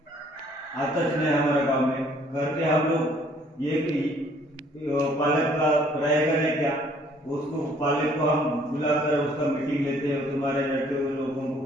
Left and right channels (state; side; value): normal; both; correlation 0.60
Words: आता नहीं हमारे गांव में। घर के हम लोग ये पालक का रहेगा नहीं क्या, उसको पालक को हम बुलाकर उसका मीटिंग लेते हैं, तुम्हारे लड़के लोगों को